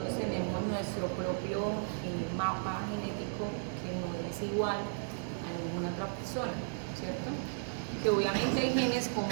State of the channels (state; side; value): silent; left; digital silence